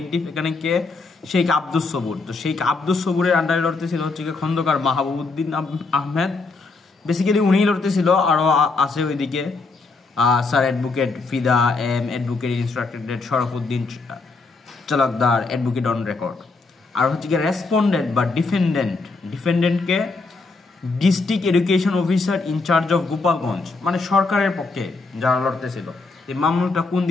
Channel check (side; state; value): right; quieter; 3.9 dB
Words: এখানে কে, শেখ আব্দুস সবুর। তো শেখ আব্দুস সবুরের আন্ডারে লড়তেছিল হচ্ছে গিয়ে খন্দকার মাহবুবউদ্দিন আহমেদ, বেসিক্যালি উনিই লড়তেছিল, আরও আছে ওইদিকে sir advocate Fida M, advocate instructed Sharfuddin Chalkdar, advocate on record. আর হচ্ছে গিয়ে রেসপন্ডেন্ট বা ডিফেন্ডেন্টকে district education officer in charge of Gopalganj, মানে সরকারের পক্ষে যারা লড়তেছিল। এই মামলাটা কোন